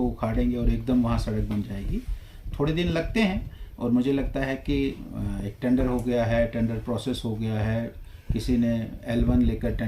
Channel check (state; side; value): identical; both; correlation 1.00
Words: उखाड़ेंगे और एकदम वहाँ सड़क बन जाएगी। थोड़े दिन लगते हैं और मुझे लगता है कि एक टेंडर हो गया है, टेंडर प्रोसेस हो गया है, किसी ने L1 लेकर